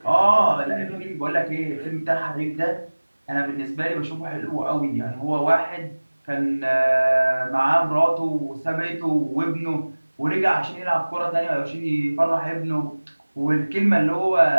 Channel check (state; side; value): inverted; both; correlation -1.00